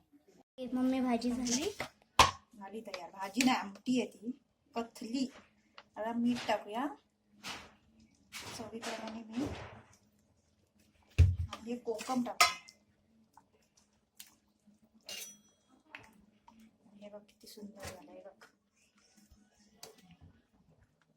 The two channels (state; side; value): identical; both; correlation 1.00